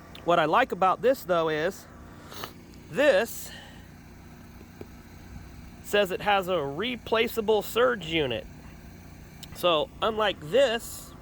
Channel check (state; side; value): identical; both; correlation 1.00